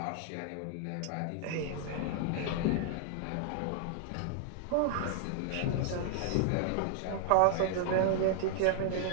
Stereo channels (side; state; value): both; different; correlation -0.01